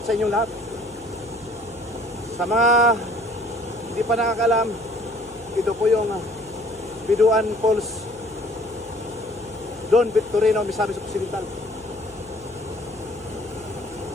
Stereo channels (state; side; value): noise; left; hum, 24 dB below the sound